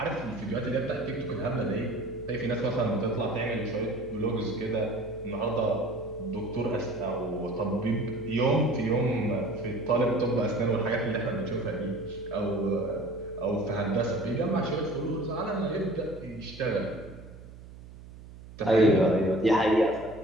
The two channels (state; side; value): noise; right; hum, 17 dB below the sound